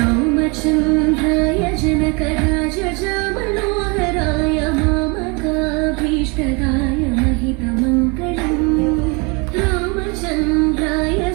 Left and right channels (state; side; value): quieter; left; 30.4 dB